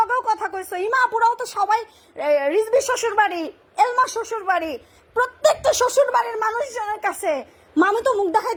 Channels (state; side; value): identical; both; correlation 1.00